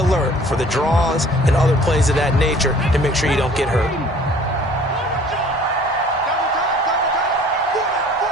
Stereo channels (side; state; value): both; normal; correlation 0.51